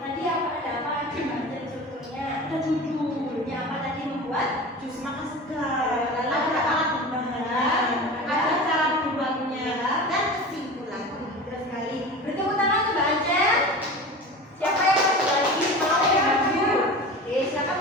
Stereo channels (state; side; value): normal; both; correlation 0.33